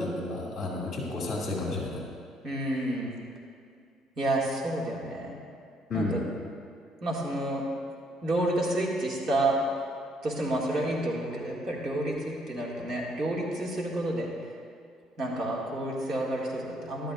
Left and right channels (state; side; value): normal; both; correlation 0.68